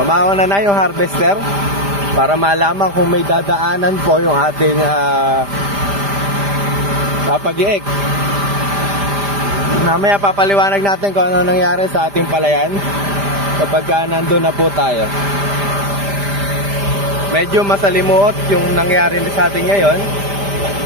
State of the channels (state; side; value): late; left; 5.0 ms